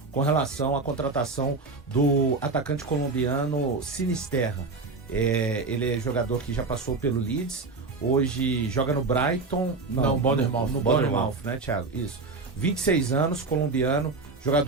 com relação à contratação do atacante colombiano Sinisterra. Ele é jogador que já passou pelo Leeds, hoje joga no Brighton, Não, Bournemouth. no Bournemouth, né, Thiago? Isso. 26 anos, colombiano,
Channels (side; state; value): left; quieter; 3.9 dB